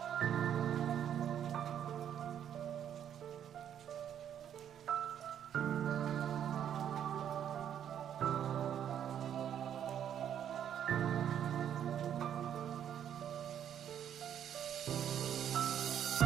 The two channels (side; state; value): left; quieter; 9.6 dB